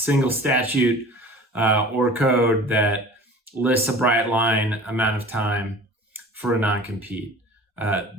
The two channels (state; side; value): normal; both; correlation 0.42